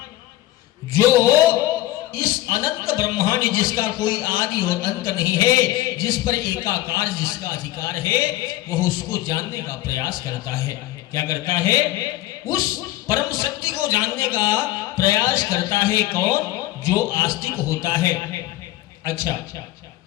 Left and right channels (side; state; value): right; quieter; 15.9 dB